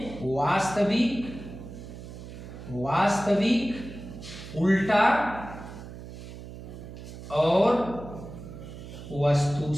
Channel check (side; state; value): right; noise; hum, 12 dB below the sound